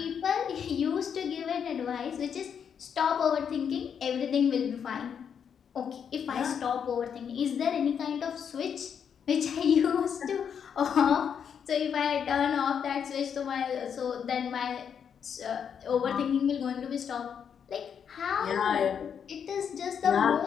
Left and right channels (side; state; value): right; quieter; 7.6 dB